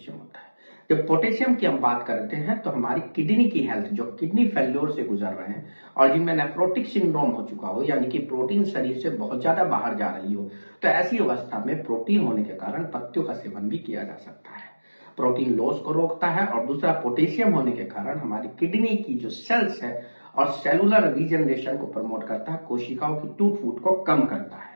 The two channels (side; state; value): both; inverted; correlation -1.00